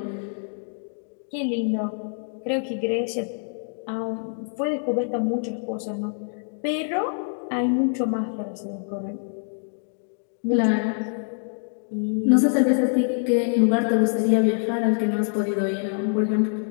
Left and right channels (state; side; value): silent; right; digital silence